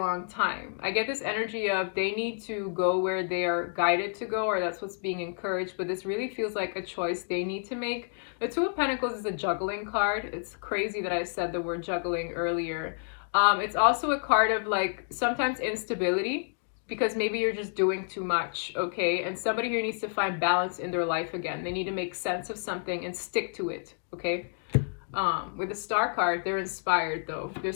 time. I get this energy of they need to go where they are guided to go, or that's what's being encouraged, but this really feels like a choice they need to make. The 2 of Pentacles is a juggling card. It's crazy that I said the word juggling earlier. It's also a card of like sometimes instability because maybe you're just doing too much, okay? And somebody here needs to find balance in their life again. They need to make sense of something and stick to it, okay? With the Star card, they're inspired though.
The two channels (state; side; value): silent; right; digital silence